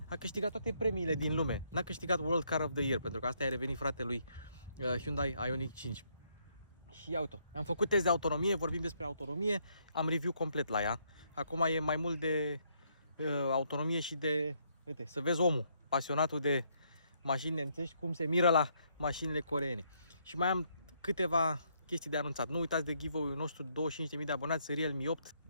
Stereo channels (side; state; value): both; inverted; correlation -0.72